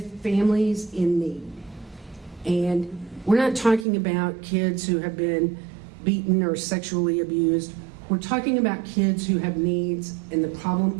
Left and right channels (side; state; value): left; drops out; at 3.9 s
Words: families in need. And we're not talking about kids who have been beaten or sexually abused. We're talking about kids who have needs, and the problem